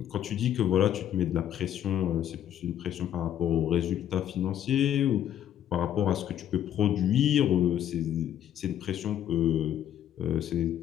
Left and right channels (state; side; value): quieter; right; 10.6 dB